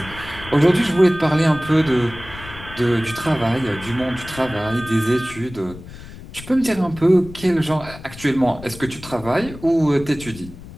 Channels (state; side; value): noise; left; rumble, 16 dB below the sound